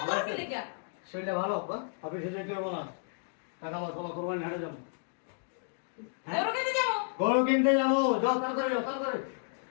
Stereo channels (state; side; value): silent; right; digital silence